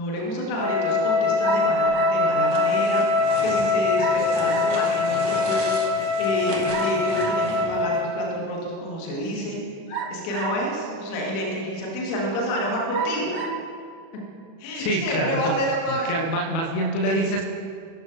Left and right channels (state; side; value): late; right; 36 ms